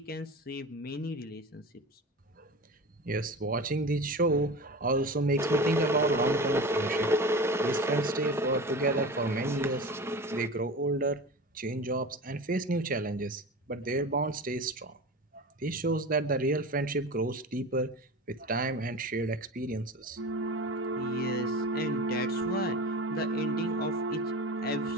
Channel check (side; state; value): both; normal; correlation 0.31